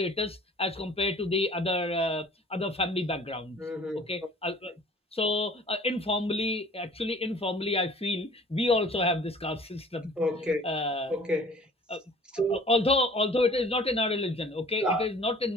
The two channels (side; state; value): both; normal; correlation 0.49